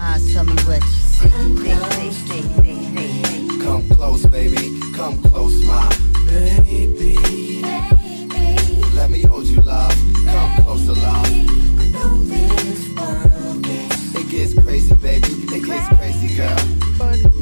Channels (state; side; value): inverted; both; correlation -1.00